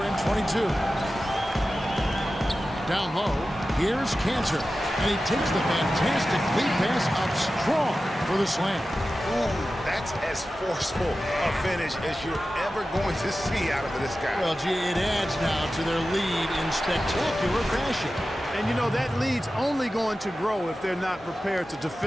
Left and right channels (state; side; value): normal; both; correlation 0.94